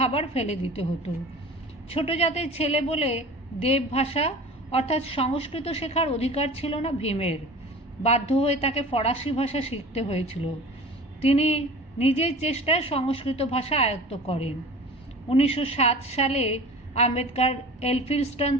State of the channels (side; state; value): both; normal; correlation 0.39